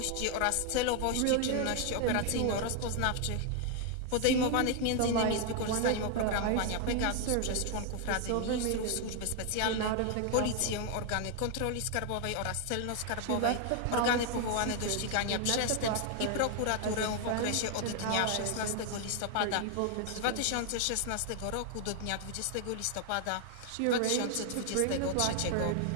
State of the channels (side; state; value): both; different; correlation 0.00